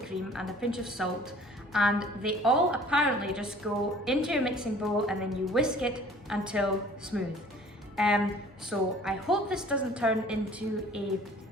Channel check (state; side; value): normal; both; correlation 0.51